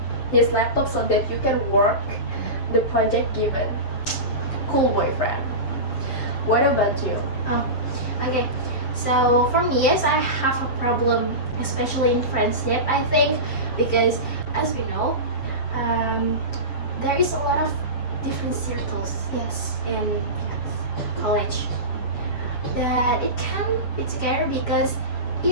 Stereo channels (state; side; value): late; right; 7.4 ms